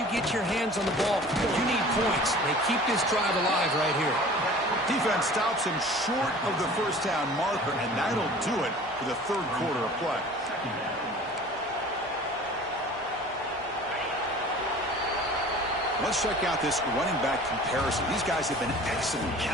get your hands on the ball, you need points. They keep this drive alive right here. Defense stops him short of the first down marker, and that'll do it for the third quarter of play. Let's check out this running back comparison. These guys have been excellent,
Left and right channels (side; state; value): both; normal; correlation 0.44